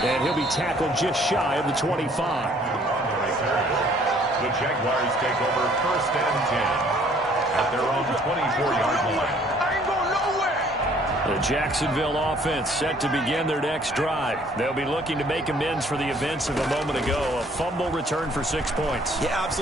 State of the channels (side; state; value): both; normal; correlation 0.59